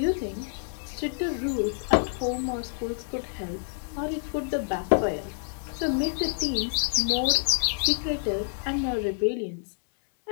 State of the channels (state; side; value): silent; right; digital silence